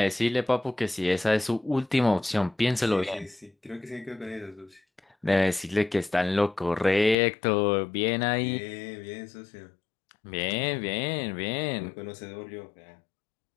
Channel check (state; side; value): drops out; right; at 7.2 s